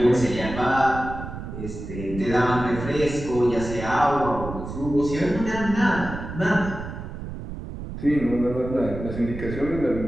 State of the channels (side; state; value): right; noise; rumble, 9 dB below the sound